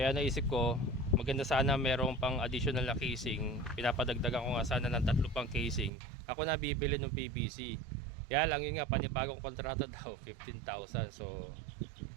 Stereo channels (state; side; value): drops out; left; at 5.9 s